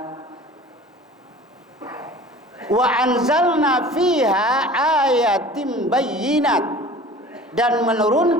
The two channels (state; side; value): normal; both; correlation 0.43